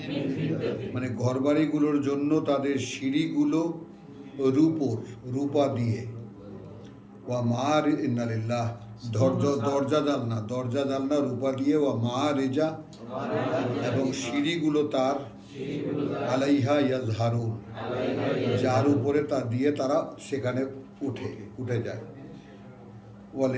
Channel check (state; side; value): identical; both; correlation 1.00